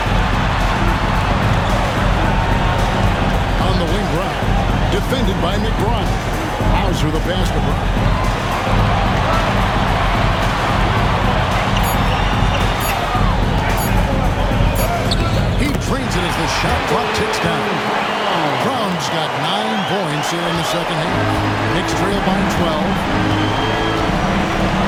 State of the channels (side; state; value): both; identical; correlation 1.00